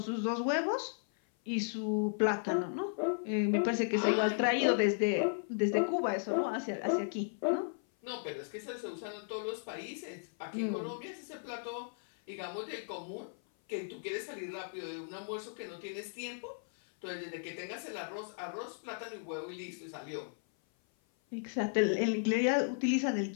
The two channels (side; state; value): right; silent; 54 dB below the other